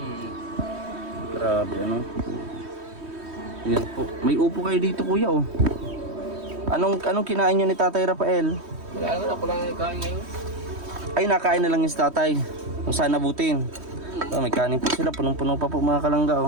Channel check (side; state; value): left; late; 3.2 ms